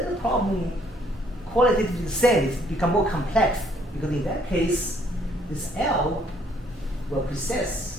the problem qualitatively the same, it's become more complex because in that case, this L will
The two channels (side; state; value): both; normal; correlation 0.65